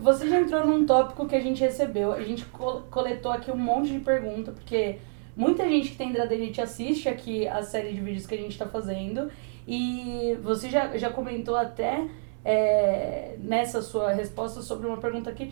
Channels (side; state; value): left; silent; 60 dB below the other